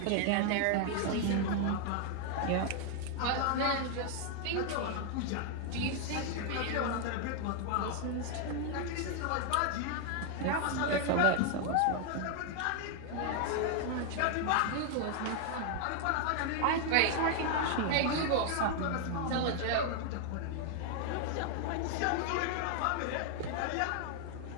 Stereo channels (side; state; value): both; different; correlation 0.00